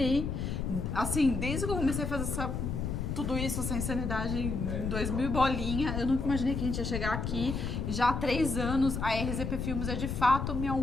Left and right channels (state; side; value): noise; left; rumble, 2 dB below the sound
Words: assim, desde que eu comecei a fazer tudo isso, essa insanidade em 2000 bolinha, eu nunca imaginei que a gente ia chegar aqui. E já há 3 anos, a RZP Filmes é de fato